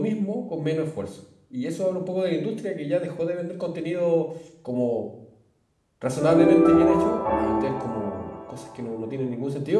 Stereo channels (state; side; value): identical; both; correlation 1.00